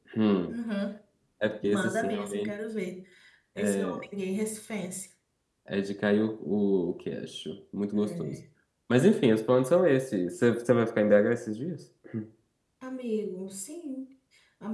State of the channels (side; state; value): both; identical; correlation 1.00